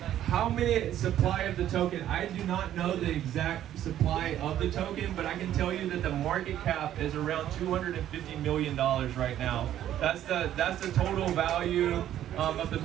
How many supply of the token? I do not know the exact supply of the token, but I can tell you that the market cap is around $250 million right now. That's the total value of the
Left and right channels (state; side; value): quieter; left; 11.7 dB